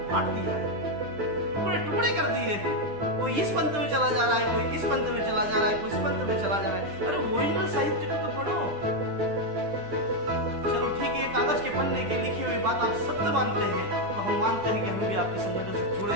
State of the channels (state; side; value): late; left; 9.9 ms